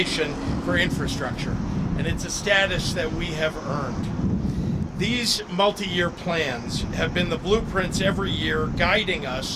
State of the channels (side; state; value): both; identical; correlation 1.00